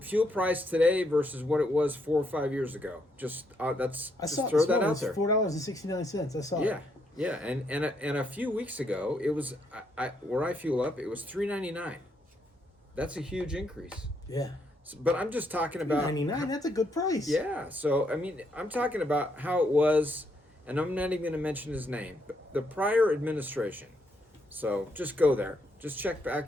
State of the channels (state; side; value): normal; both; correlation 0.75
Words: fuel price today versus what it was 4 or 5 years ago? Just throw that out there. $4.69. I saw it. Yeah, and a few weeks ago it was where I fuel up, it was $3.99. That's a huge increase. Yeah. But I'm just talking about $3.99. That's a good price. Yeah, so I mean, I'm talking about how it was, and I'm not even going to mention his name, but the prior administration. So just go there. Just check